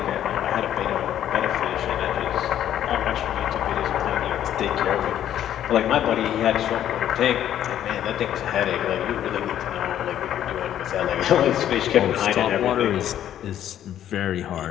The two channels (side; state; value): right; quieter; 11.0 dB